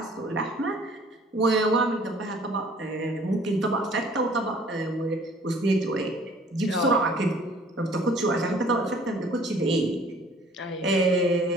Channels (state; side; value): normal; both; correlation 0.54